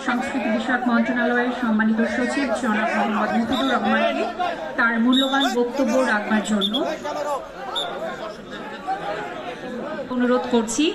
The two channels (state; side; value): identical; both; correlation 1.00